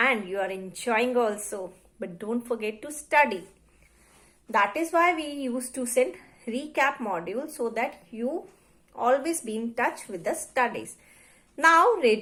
you are enjoying also. But don't forget to study. That is why we used to send recap module so that you always be in touch with the studies. Now,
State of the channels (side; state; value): both; identical; correlation 1.00